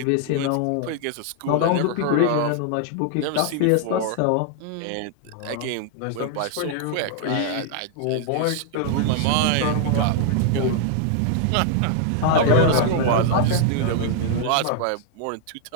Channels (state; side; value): different; both; correlation 0.00